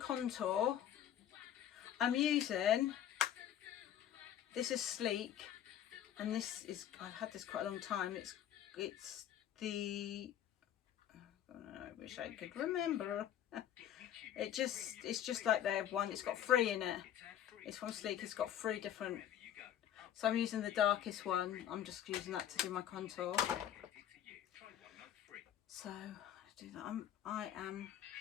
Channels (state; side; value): quieter; right; 10.7 dB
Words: I'm using, this is Sleek, and this is, I've had this quite a long time. It's the, I wish I could remember. It's just like their one. It's got 3 in it. It's from Sleek. It's got 3 different. So I'm using the darkest one. I'm just using that to do my contour. So let's do that. I